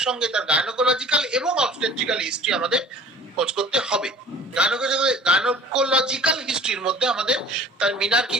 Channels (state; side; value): normal; both; correlation 0.46